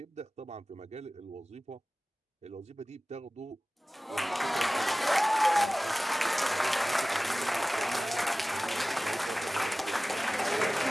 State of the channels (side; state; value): both; normal; correlation 0.98